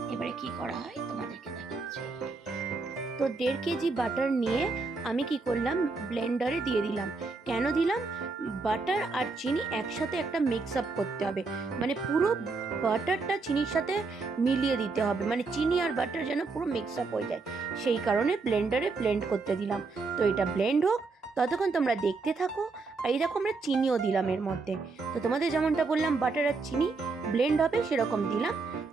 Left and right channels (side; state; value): left; quieter; 4.0 dB